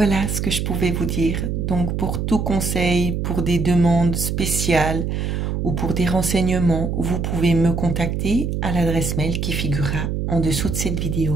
ce que je pouvais vous dire. Donc, pour tout conseil, pour des demandes spéciales ou pour des renseignements, vous pouvez me contacter à l'adresse mail qui figurera en dessous de cette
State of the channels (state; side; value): noise; right; hum, 1 dB below the sound